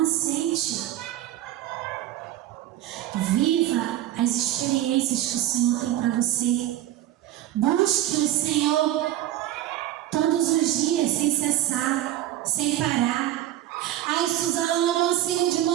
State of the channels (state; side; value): quieter; left; 13.3 dB